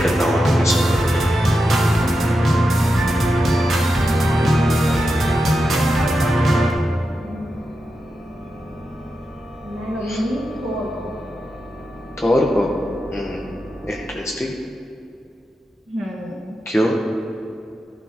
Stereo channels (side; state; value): both; normal; correlation 0.88